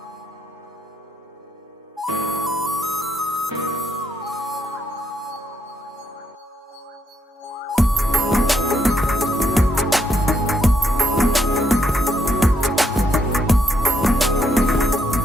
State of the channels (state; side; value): normal; both; correlation 0.76